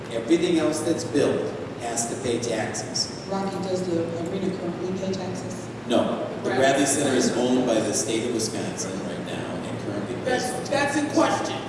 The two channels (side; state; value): both; identical; correlation 1.00